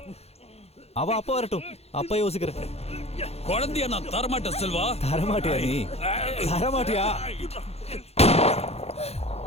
அவ அப்பா வரட்டும், அப்பா யோசிக்கிறேன். குழந்தைய நான் தரமாட்டேன் செல்வா. தரமாட்டியா நீ? தரமாட்டியா?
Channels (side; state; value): right; late; 0.30 ms